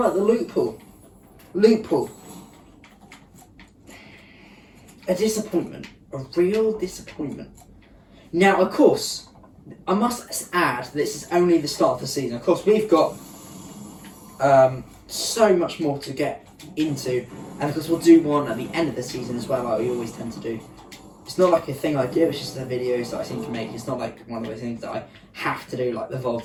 the loot pool. Loot pool. A disappointment. A real disappointment. Now, of course, I must add, this is only the start of the season. Of course, we've got so much more to get into, and of course we'll do one at the end of the season as well, like we always tend to do. It's not like a thing I do, it's just the videos that I seem to make. It's not like one of those things that I have to do, like the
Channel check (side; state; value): both; identical; correlation 1.00